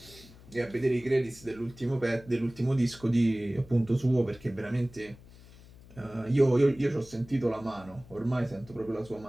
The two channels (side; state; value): left; noise; hum, 21 dB below the sound